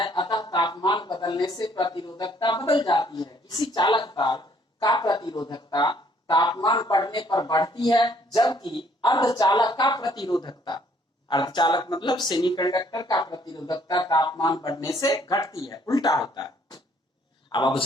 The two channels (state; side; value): normal; both; correlation 0.64